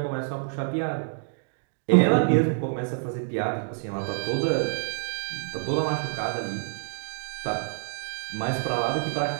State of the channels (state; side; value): silent; left; digital silence